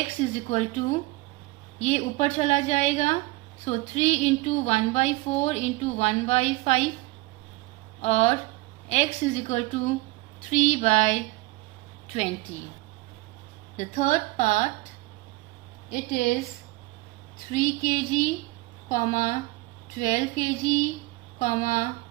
is equal to, ये ऊपर चला जाएगा, so 3 into 1 by 4 into 1 by 5, और x is equal to 3 by 20. The third part, it is 3 kg, 12 kg,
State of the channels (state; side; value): quieter; left; 21.7 dB